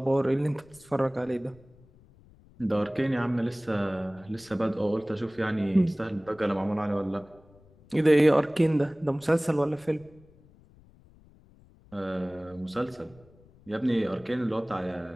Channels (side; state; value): left; noise; rumble, 26 dB below the sound